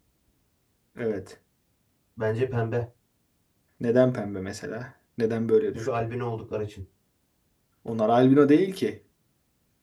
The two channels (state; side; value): identical; both; correlation 1.00